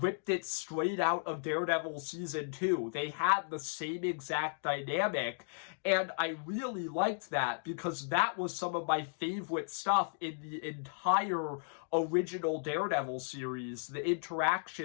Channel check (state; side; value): silent; right; digital silence